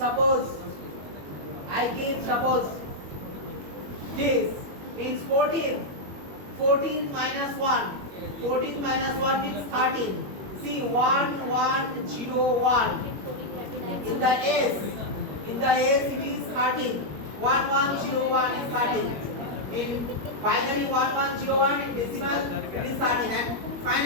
this means 14. 14 minus 1. 14 minus 1 means 13. See 1 1 0 1. In the S it is 13. 1 1 0 1 is 13. In binary 1 1 0 1, in decimal it is 13, and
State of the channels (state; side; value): late; left; 21 ms